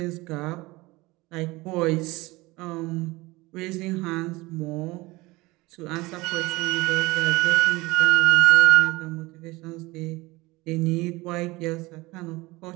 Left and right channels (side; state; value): left; quieter; 21.6 dB